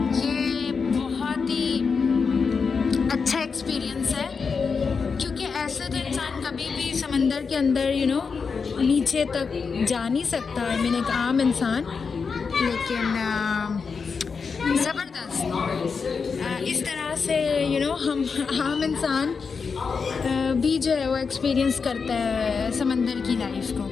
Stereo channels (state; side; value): quieter; right; 5.3 dB